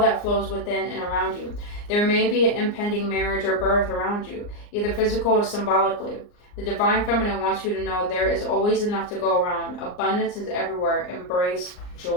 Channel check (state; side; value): late; right; 39 ms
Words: flows within and around you. There may be an impending marriage or birth around you, either physical or symbolically. The Divine Feminine wants you to know there is always enough to go around. Abundance is everywhere. Embrace